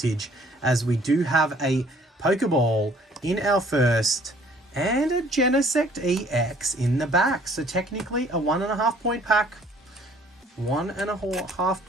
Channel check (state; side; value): normal; both; correlation 0.58